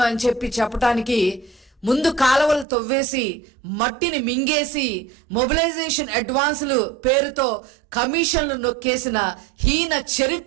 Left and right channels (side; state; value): left; drops out; at 2.7 s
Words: అని చెప్పడానికి ముందు కాలువలు తవ్వేసి మట్టిని మింగేసి మొబిలైజేషన్ అడ్వాన్సులు పేరుతో కమిషన్లు నొక్కేసిన హీన